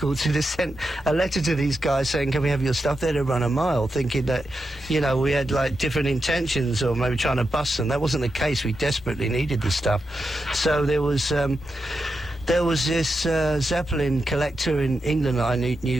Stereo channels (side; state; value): both; normal; correlation 0.87